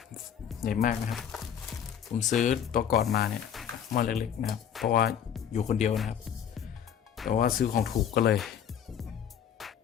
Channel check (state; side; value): quieter; right; 8.8 dB